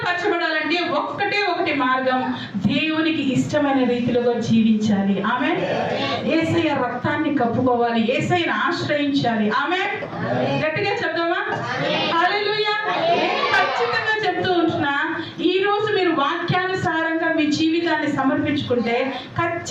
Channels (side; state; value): both; identical; correlation 1.00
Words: పరచబడాలంటే ఒకటి మార్గం, దేవునికి ఇష్టమైన రీతిలో జీవించాలి. ఆమేన్. యేసయ్య రక్తాన్ని కప్పుకోవాలి, యేసయ్యను ఆశ్రయించాలి. ఆమేన్. గట్టిగా చెప్దామా? హల్లెలూయా. ఖచ్చితంగా చెప్తూ ఉంటున్నా, ఈ రోజు మీరు వాక్యానుసారంగా మీ జీవితాన్ని సమర్పించుకుంటే